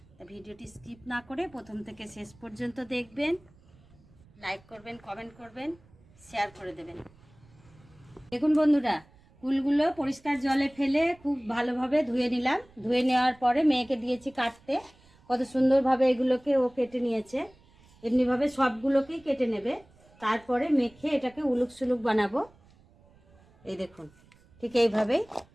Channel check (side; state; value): right; noise; rumble, 28 dB below the sound